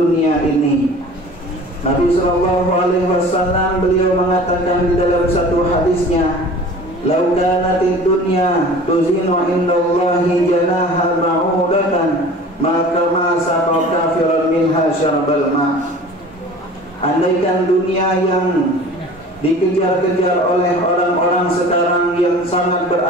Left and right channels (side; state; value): both; normal; correlation 0.43